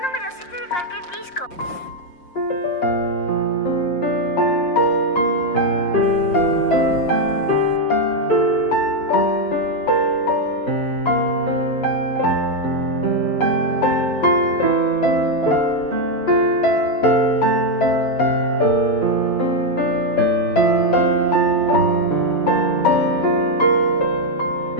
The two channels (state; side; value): late; right; 5.7 ms